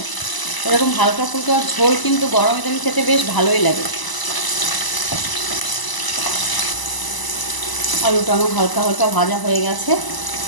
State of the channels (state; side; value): late; right; 1.0 ms